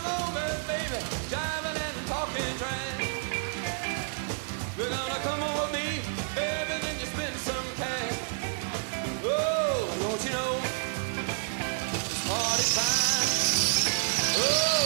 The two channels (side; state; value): left; silent; digital silence